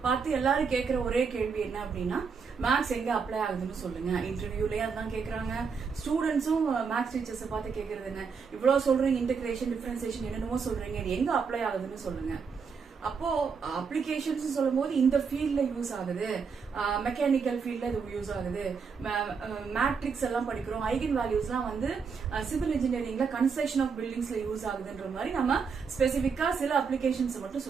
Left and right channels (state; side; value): quieter; left; 5.7 dB